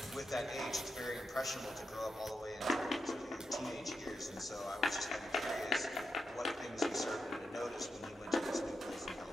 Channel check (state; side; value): normal; both; correlation 0.86